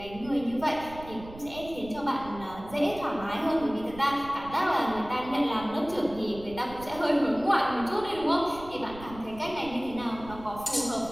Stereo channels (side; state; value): right; noise; rumble, 16 dB below the sound